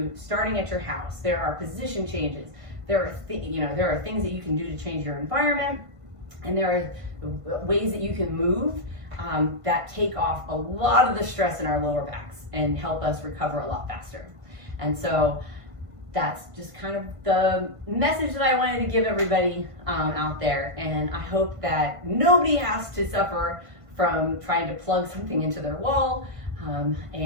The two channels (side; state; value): left; late; 1.5 ms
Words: starting at your house. There are position changes. There are things that you can do to change your environment, and there are ways that you can move that take off a lot of the stress in our lower backs and help us recover a lot faster. And so that's just kind of the message that I wanted to give everybody out there. And I hope that nobody has to suffer from trying to plug something into their wall.